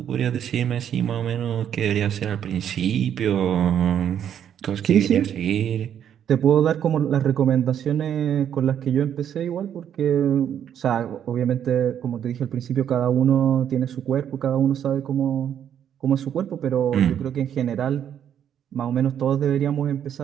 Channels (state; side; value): quieter; left; 9.4 dB